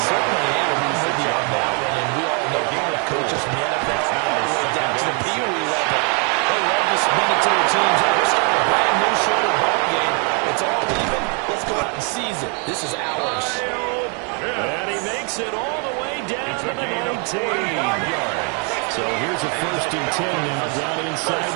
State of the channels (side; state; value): left; quieter; 36.6 dB